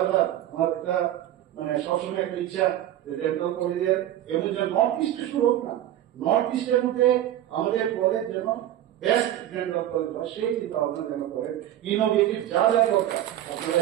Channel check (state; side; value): quieter; left; 12.5 dB